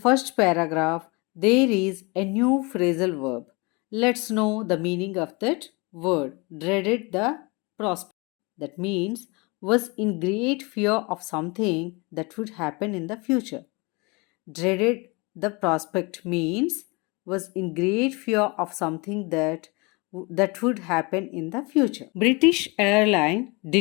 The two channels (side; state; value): right; quieter; 27.6 dB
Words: paragraph, there is a new phrasal verb. Let's know the meaning of that word. Dreaded the prospect. That means was in great fear of something that would happen in the future. Dreaded the prospect means was in great fear of something that would happen in the future. British airline